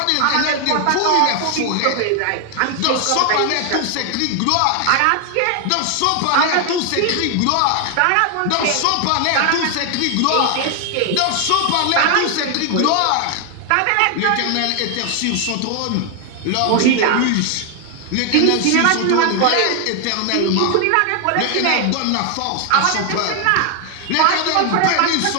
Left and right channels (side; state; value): both; different; correlation 0.00